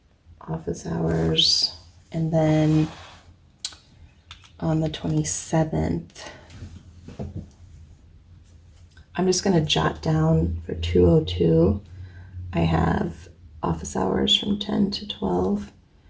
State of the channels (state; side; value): identical; both; correlation 1.00